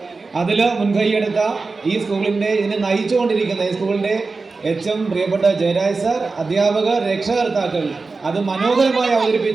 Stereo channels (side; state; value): left; quieter; 4.0 dB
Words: അതിൽ മുൻകൈയെടുത്ത ഈ സ്കൂളിൻ്റെ ഇതിനെ നയിച്ചുകൊണ്ടിരിക്കുന്ന ഈ സ്കൂളിൻ്റെ HM പ്രിയപ്പെട്ട ജയരാജ് സാർ, അധ്യാപകർ, രക്ഷകർത്താക്കൾ, അത് മനോഹരമായി